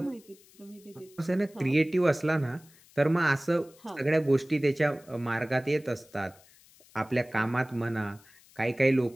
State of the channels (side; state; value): left; noise; hiss, 27 dB below the sound